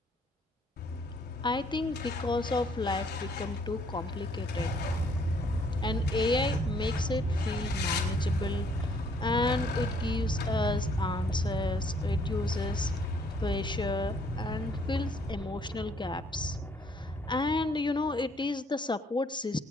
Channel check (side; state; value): both; normal; correlation 0.64